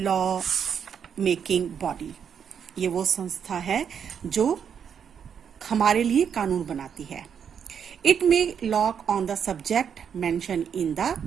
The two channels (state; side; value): quieter; left; 7.6 dB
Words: law making body. ये वो संस्था है जो हमारे लिए कानून बनाती है. It may law on the subject mentioned in the